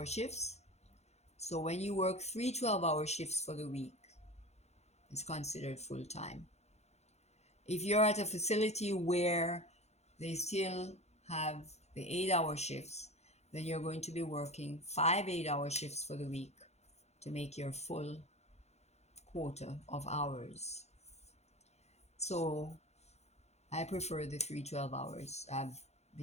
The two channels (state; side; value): late; right; 0.32 ms